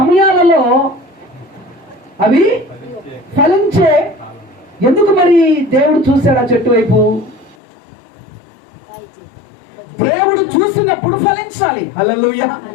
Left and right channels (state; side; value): drops out; right; at 7.6 s